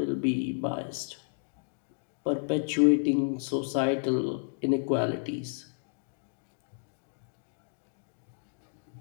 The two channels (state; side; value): silent; right; digital silence